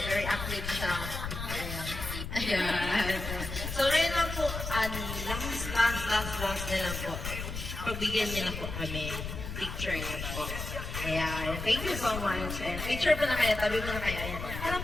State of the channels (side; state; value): left; noise; rumble, 6 dB below the sound